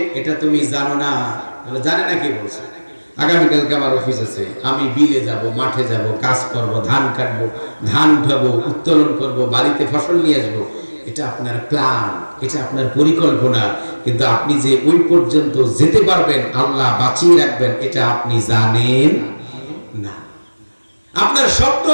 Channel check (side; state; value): both; inverted; correlation -1.00